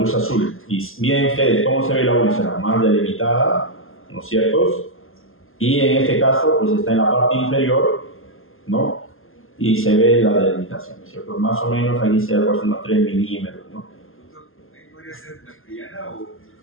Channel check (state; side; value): late; right; 0.60 ms